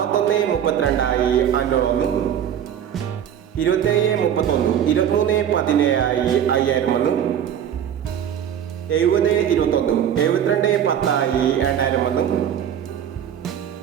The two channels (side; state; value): left; quieter; 9.4 dB